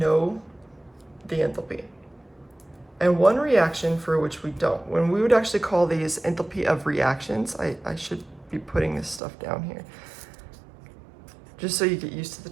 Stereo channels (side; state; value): left; drops out; at 9.2 s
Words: the enthalpy, and one reaction for which we don't. When we would actually call these enthalpy of reactions, I should be putting this stuff down here just so you get used to the